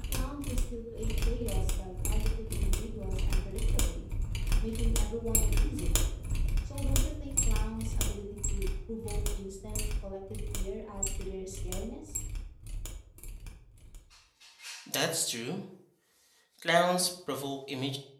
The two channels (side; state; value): both; identical; correlation 1.00